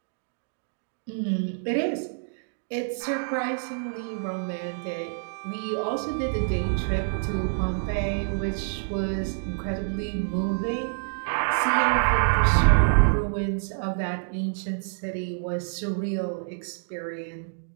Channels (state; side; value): silent; left; digital silence